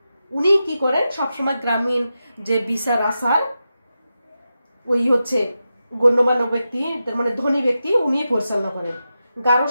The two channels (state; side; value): inverted; both; correlation -0.90